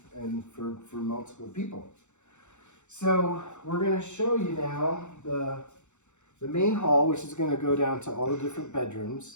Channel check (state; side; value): late; right; 0.83 ms